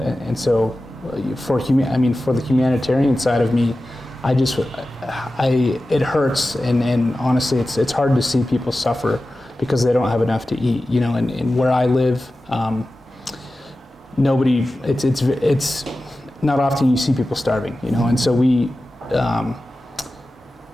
so for the humanitarian side of me, it hurts, and honestly it's hard to see people suffer because they don't have enough to eat, and where I live, it's not often you see people starving, and so we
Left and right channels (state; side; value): normal; both; correlation 0.94